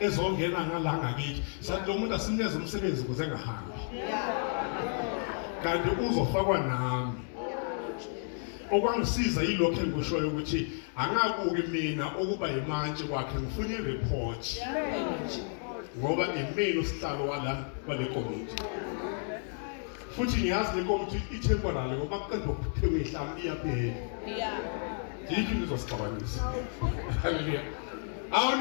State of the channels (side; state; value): right; silent; 57 dB below the other